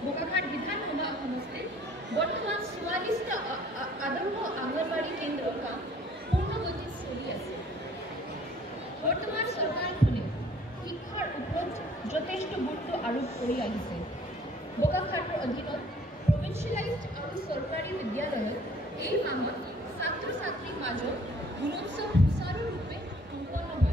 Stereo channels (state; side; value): normal; both; correlation 0.56